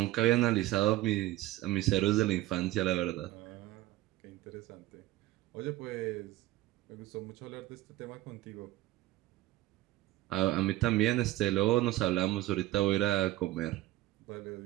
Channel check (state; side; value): quieter; left; 16.6 dB